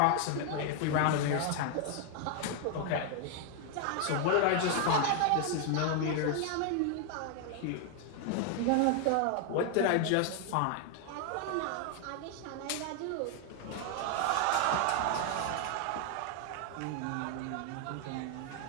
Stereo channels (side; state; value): both; different; correlation 0.00